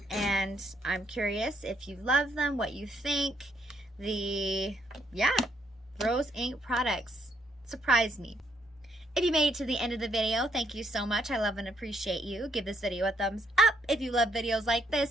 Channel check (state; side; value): normal; both; correlation 0.73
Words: I'm curious if you love them, what you think. Rose Ink products surprised me. If you made it to the end of the video, thank you so much. I love and appreciate you. Give this video a thumbs up if you love videos like this,